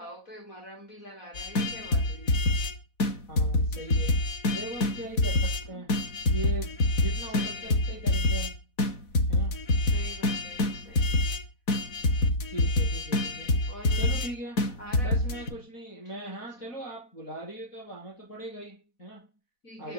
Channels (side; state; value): right; late; 4.1 ms